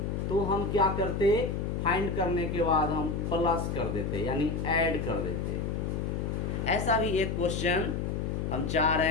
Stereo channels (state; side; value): noise; left; hum, 2 dB below the sound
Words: तो हम क्या करते, फाइंड करने के बाद हम प्लस कर देते यानी ऐड कर देते। ऐसा भी एक क्वेश्चन हम चाह